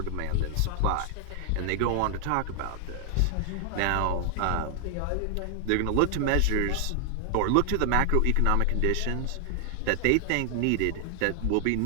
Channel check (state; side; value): different; both; correlation 0.00